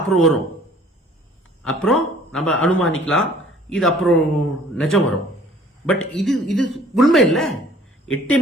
அப்புறம் வரும், அப்புறம் நம்ம அனுமானிக்கலாம், இது அப்புறம் நிஜம் வரும். பட் இது உண்மை இல்ல.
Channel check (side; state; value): both; normal; correlation 0.53